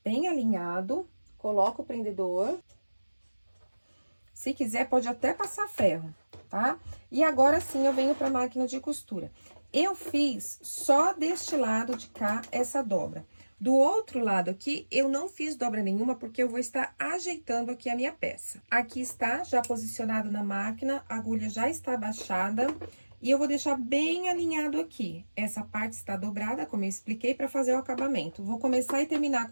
Bem alinhado, coloca o prendedor. Se quiser, pode até passar ferro, tá? E agora sim, eu venho para a máquina de costura. Eu fiz só deste lado de cá essa dobra. Do outro lado aqui, eu não fiz dobra nenhuma, porque eu vou estar ajeitando aqui a minha peça. Aqui está, já posicionado na máquina, a agulha já está abaixada. E eu vou deixar bem alinhado aqui. Essa parte está dobrada, como eu expliquei, para fazer o acabamento. Vou começar e terminar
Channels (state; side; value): inverted; both; correlation -1.00